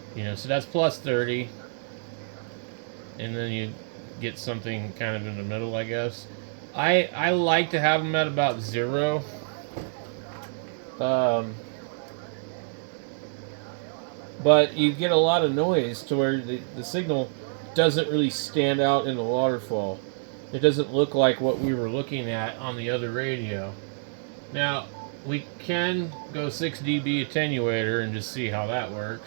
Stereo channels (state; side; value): silent; left; digital silence